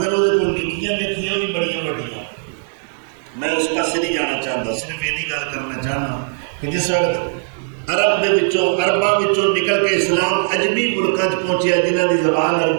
وہ نکیاں لکھیاں بھی بڑی بڑیاں. میں اس پاس نہیں جانا چاہتا صرف یہ گل کرنا چاہنا کہ جس وقت عرب دے وچوں عرباں وچوں نکل کے اسلام عجمی ملکاں چ پہنچیا جنہاں دی زبان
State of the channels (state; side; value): silent; left; 63 dB below the other